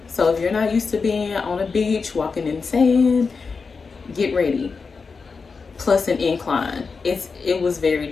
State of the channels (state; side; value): quieter; right; 4.9 dB